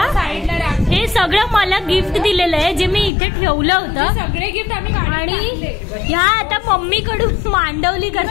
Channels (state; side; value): drops out; right; at 3.1 s